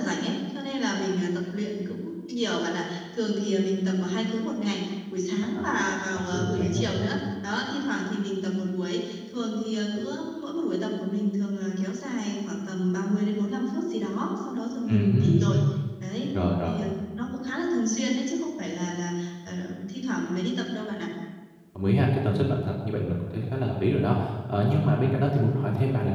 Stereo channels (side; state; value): both; identical; correlation 1.00